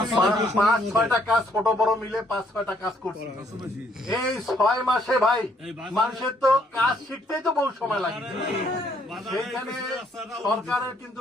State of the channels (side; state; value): both; normal; correlation 0.68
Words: 5-6টা কাজ, ছোট বড় মিলে 5-6টা কাজ করছি এই 6 মাসে। ভাই, মানুষের তো কাজ শিখতেই তো বহু সময় লাগে। সেইখানে সরকারের কিন্তু